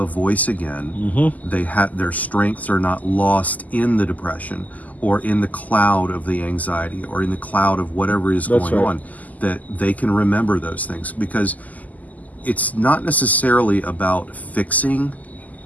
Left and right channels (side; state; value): right; late; 0.078 ms